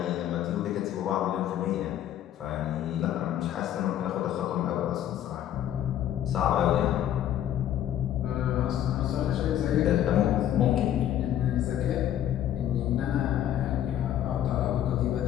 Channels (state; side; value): quieter; right; 11.2 dB